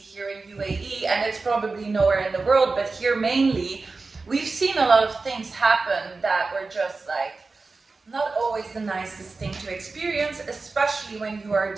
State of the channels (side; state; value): left; quieter; 3.9 dB